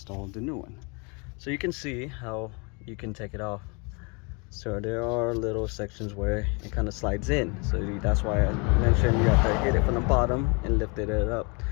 the new one. So you can see how you can take it off. So there are little sections where it kind of slides in. So that's why I mentioned you have to hit it from the bottom and lift it up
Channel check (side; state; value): right; quieter; 31.7 dB